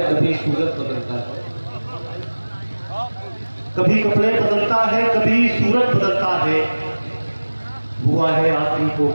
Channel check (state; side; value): inverted; both; correlation -1.00